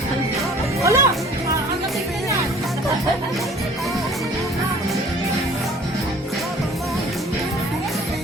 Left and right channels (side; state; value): both; normal; correlation 0.51